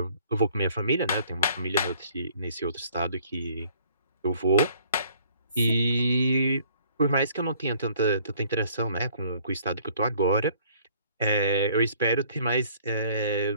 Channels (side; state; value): both; inverted; correlation -0.58